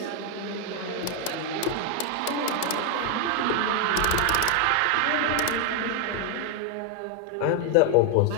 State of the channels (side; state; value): both; different; correlation 0.01